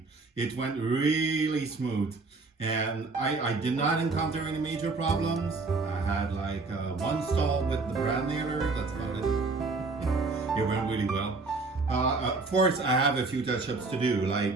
It went really smooth. And I did not encounter any major problems. I had like one stall with the brand nailer. That's about it. Yeah, it went really well. Of course, I have a few touch-ups to do.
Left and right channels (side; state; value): left; quieter; 3.8 dB